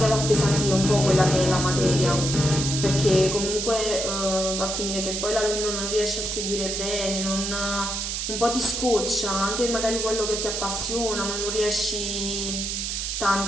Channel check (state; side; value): noise; right; hiss, 3 dB below the sound